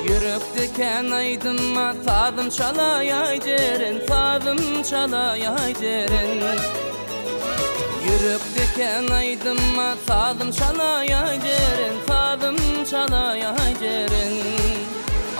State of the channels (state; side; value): inverted; both; correlation -1.00